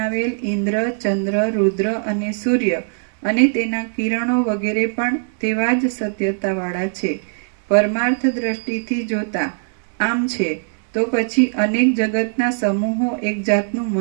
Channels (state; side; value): silent; left; digital silence